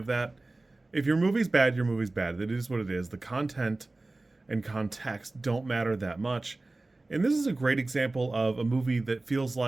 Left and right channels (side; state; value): left; quieter; 3.1 dB